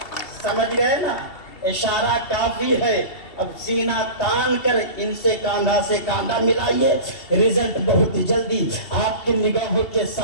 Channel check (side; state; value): right; late; 2.7 ms